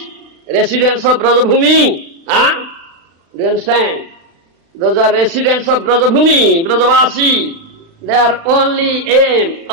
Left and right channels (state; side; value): late; left; 36 ms